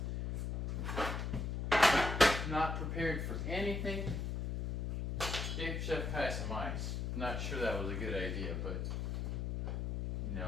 Not prepared for anything. Gave Chef Kai some ice. Not sure that was a good idea, but you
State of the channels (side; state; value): left; noise; hum, 2 dB below the sound